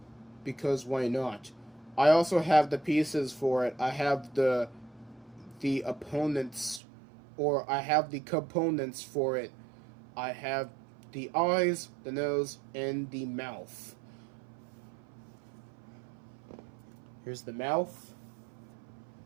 because why not? I also have the pieces for it. I have the opponents, or I have the components for it. I have the eyes, the nose, and the mouth. Here's the mouth,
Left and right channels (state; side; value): drops out; left; at 6.8 s